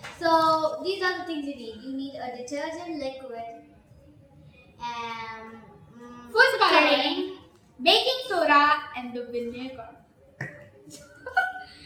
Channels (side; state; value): both; identical; correlation 1.00